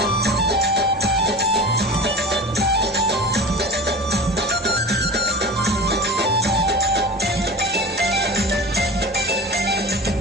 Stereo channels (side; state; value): both; normal; correlation 0.34